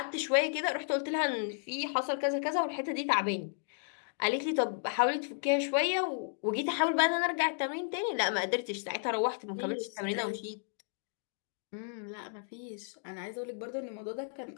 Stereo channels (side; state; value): right; silent; digital silence